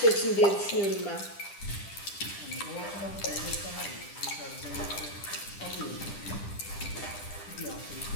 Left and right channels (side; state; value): right; late; 10 ms